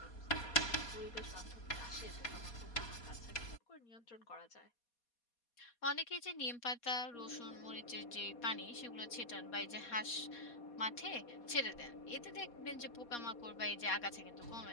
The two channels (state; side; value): late; right; 4.2 ms